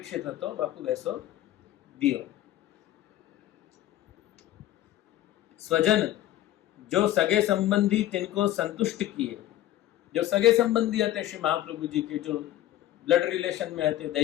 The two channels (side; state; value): right; quieter; 13.7 dB